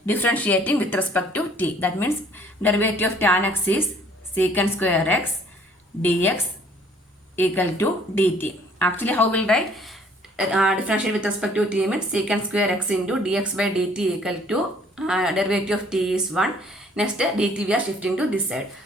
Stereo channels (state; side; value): normal; both; correlation 0.58